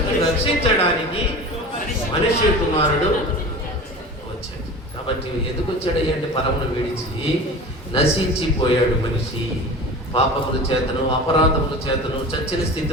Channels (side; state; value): both; normal; correlation 0.35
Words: రక్షించడానికి మనిషి కుమారుడు వచ్చాడు. కాబట్టి ఎందుకు వచ్చాడు అంటే పరమును విడిచి నశించిపోయాడు మనిషి. పాపముల చేతను అపరాధముల చేతను చచ్చిన